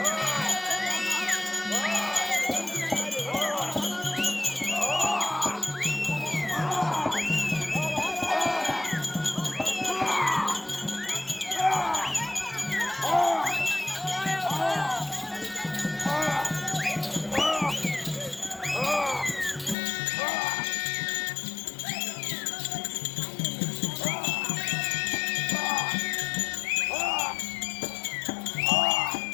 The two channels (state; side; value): drops out; right; at 19.8 s